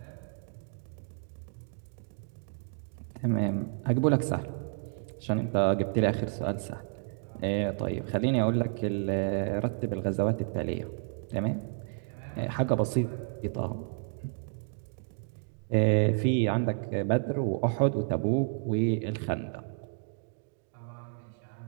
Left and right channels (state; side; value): silent; left; 57 dB below the other